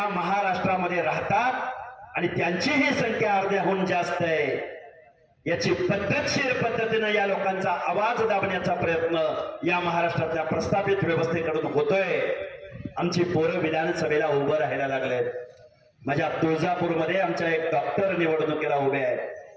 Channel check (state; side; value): identical; both; correlation 1.00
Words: महाराष्ट्रामध्ये राहतात आणि त्यांची ही संख्या अर्ध्याहून जास्त आहे। याची पद्धतशीर पद्धतीने या लोकांचा आवाज दाबण्याचा प्रयत्न या महाराष्ट्रातल्या प्रस्थापित व्यवस्थेकडून होतोय। आमची पोरं विधानसभेला उभं राहायला लागलेत। माझ्या तुळजापूरमध्ये आमच्या एक डॉक्टर निवडणुकीला उभे आहेत।